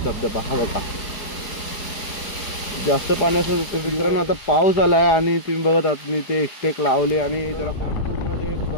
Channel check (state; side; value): late; right; 4.9 ms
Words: धबधबा हा बघा. जास्त पाणी असून मित्रांनो आता पाऊस आला आहे आणि तुम्ही बघत आहात मी ते स्टेक लावले आणि जरा पूर्ण ते